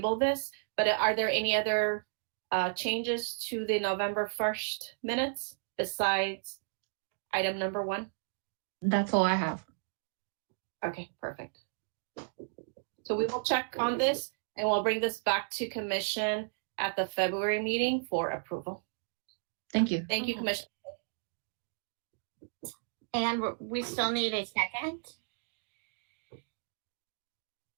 this. But are there any other changes to the November 1st minutes besides item number 1? That's all I have. Okay, perfect. So we will check on this and we'll bring this back to commission at the February meeting for approval. Thank you. Thank you, Commissioner. And we still need a second.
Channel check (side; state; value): left; silent; digital silence